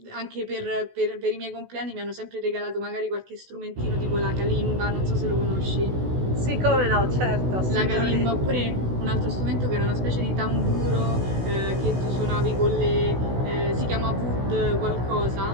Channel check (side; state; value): left; late; 16 ms